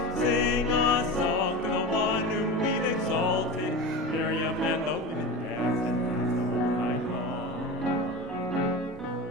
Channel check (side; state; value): both; normal; correlation 0.27